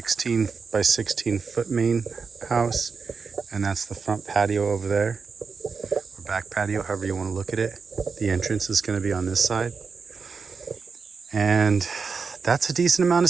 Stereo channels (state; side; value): quieter; left; 5.1 dB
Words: by 16 foot main house, and that's the front patio over there, or back patio, however you want to look at it. The entrance is going to be on this side, and that's a decent amount of